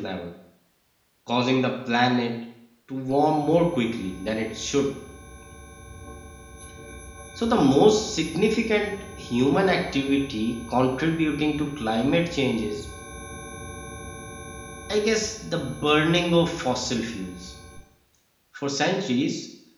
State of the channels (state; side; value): identical; both; correlation 1.00